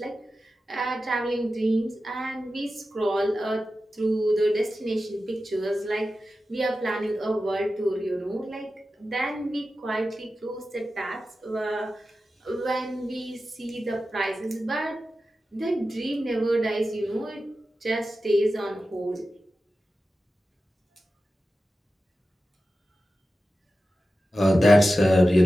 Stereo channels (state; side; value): normal; both; correlation 0.93